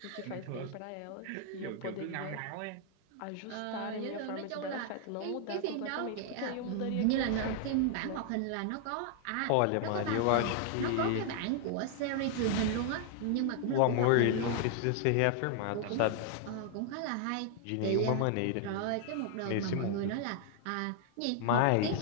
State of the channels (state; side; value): different; both; correlation 0.00